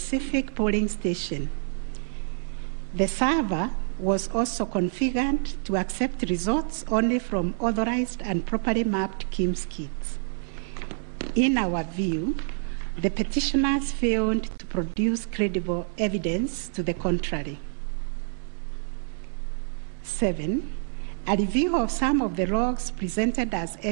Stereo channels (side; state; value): left; silent; 58 dB below the other